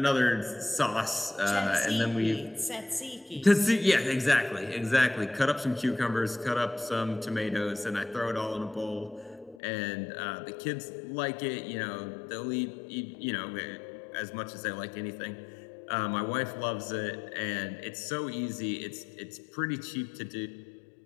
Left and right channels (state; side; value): drops out; right; at 9.6 s